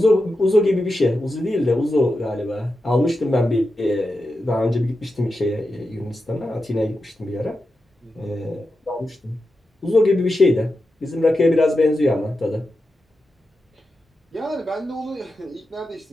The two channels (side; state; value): both; normal; correlation 0.89